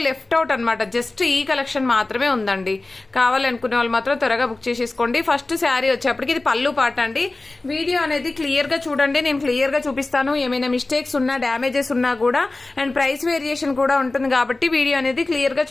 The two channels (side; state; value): right; quieter; 3.1 dB